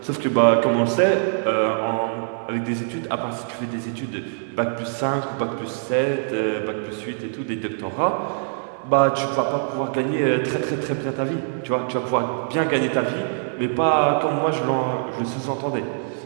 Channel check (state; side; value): silent; left; digital silence